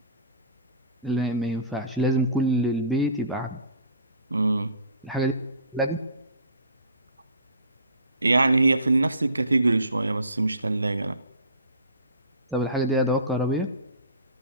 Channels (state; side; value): inverted; both; correlation -0.44